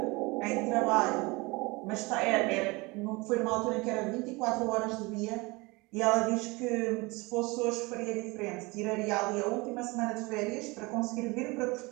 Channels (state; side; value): quieter; left; 24.6 dB